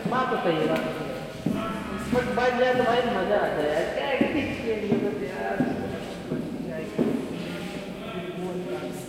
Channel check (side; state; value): both; identical; correlation 1.00